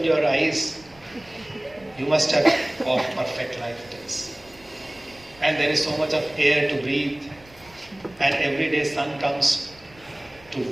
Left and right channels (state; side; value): noise; right; rumble, 26 dB below the sound